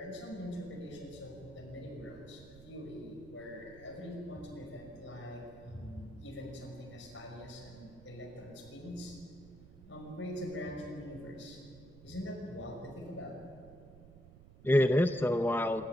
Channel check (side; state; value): right; noise; rumble, 19 dB below the sound